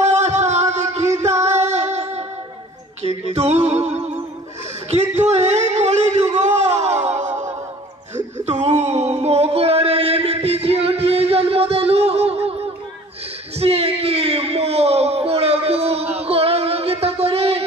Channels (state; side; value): normal; both; correlation 0.49